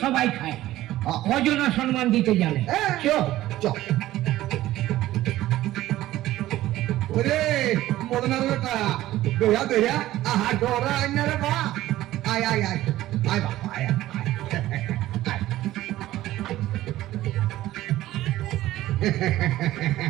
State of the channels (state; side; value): quieter; left; 15.2 dB